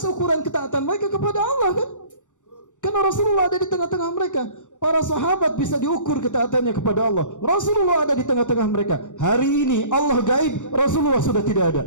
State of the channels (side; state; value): right; late; 0.86 ms